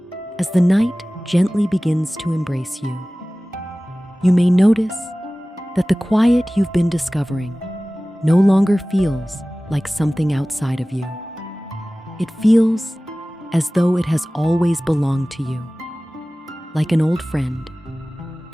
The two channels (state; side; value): normal; both; correlation 0.98